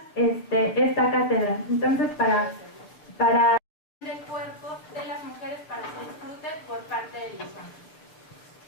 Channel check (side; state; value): right; late; 6.5 ms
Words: esta cátedra. Entonces, para del cuerpo de las mujeres para que disfruten por parte de los hombres.